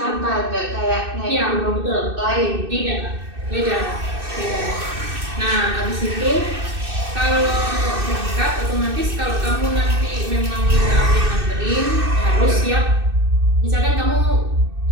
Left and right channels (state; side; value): late; left; 2.6 ms